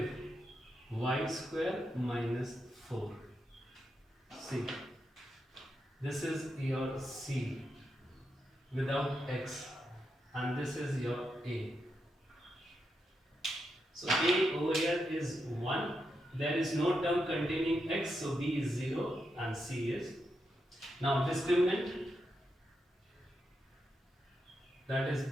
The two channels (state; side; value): normal; both; correlation 0.84